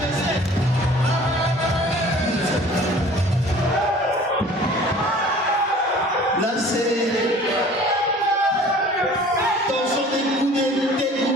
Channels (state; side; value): normal; both; correlation 0.48